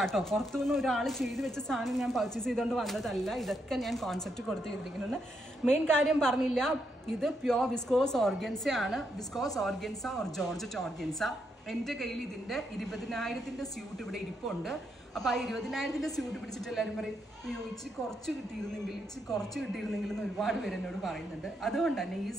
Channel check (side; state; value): both; normal; correlation 0.79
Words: പുറത്തുനിന്ന് ഒരാൾ ചെയ്ത് വെച്ച സാധനം ഞാൻ പർച്ചേസ് ചെയ്തുകൊണ്ട് വന്നതല്ല. ഇതൊക്കെ ഞാൻ കോൺസെപ്റ്റ് കൊടുത്ത് ചെയ്തിരിക്കുന്നത്. മെയിൻ കാര്യം പറഞ്ഞില്ല, ഇത് പ്യോർ വിസ്കോസ് ഓർഗൻസ ആണ്. Viscous organza or georgette organza. എൻ്റെ കയ്യിൽ ഇതിൻ്റെ 20,000 സ്യൂട്ട് ഇവിടെ ഇരിപ്പുണ്ട്. അപ്പോൾ ആ 20,000 സ്യൂട്ട് പിടിച്ചിട്ട് എല്ലാവരും പറയും, അയ്യോ ഇച്ചിരി കുറച്ച് കിട്ടിയിരുന്നെങ്കിൽ എന്ന് ഒരുപാട് പേര് എന്നോട് പറയുന്നുണ്ട്. അതുകൊണ്ട് തന്നെ ഈ